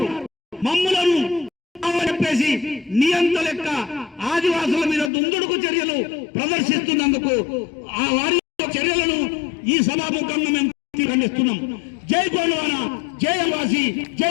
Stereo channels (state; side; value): drops out; right; at 5.1 s